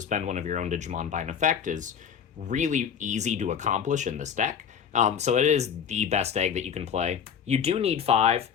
one of your own Digimon by an effect is really easy to accomplish in this deck. So it is the best egg that you can play. You do need 5,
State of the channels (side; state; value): right; quieter; 7.7 dB